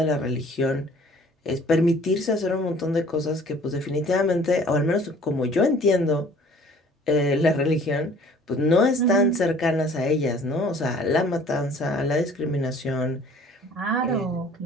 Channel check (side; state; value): both; normal; correlation 0.52